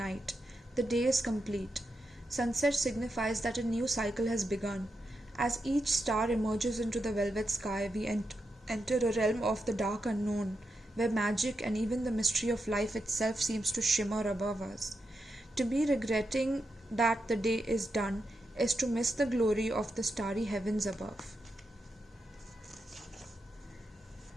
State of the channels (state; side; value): normal; both; correlation 0.86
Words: the day is complete. Sunset signifies that a new cycle has begun. As each star emerges into the velvet sky, we enter a realm of the dark unknown, where magic and even the mystery of life itself seems to shimmer above us. To be regretting that the day is done is to miss the glory of the starry heavens above.